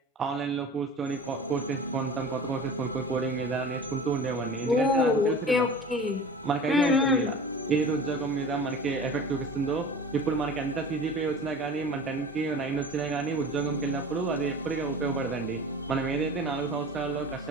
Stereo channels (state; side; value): normal; both; correlation 0.38